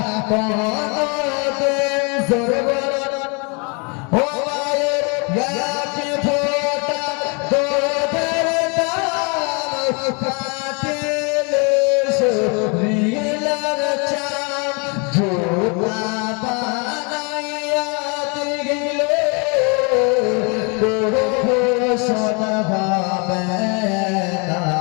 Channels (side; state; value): right; quieter; 33.5 dB